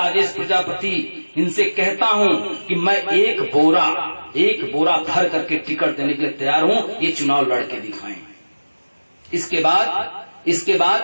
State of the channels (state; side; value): inverted; both; correlation -1.00